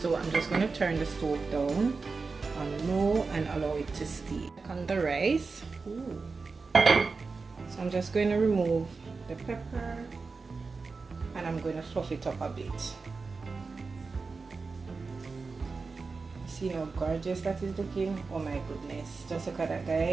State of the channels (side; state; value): left; quieter; 4.3 dB